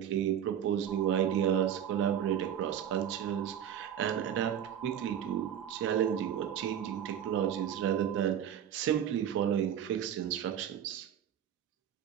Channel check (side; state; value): left; quieter; 9.6 dB